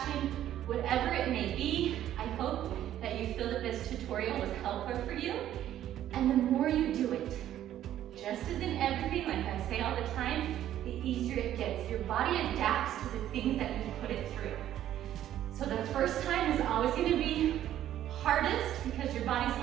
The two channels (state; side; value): quieter; left; 11.9 dB